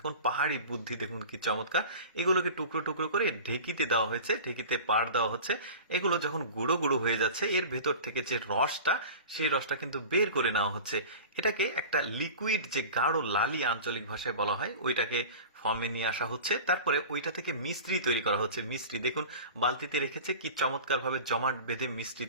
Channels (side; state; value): both; inverted; correlation -0.36